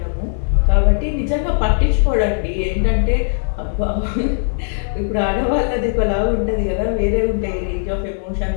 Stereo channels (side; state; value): right; silent; 59 dB below the other